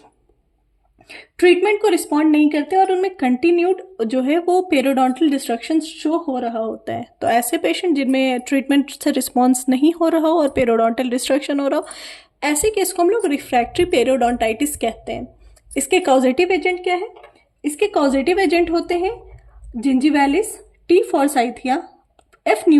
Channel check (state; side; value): identical; both; correlation 1.00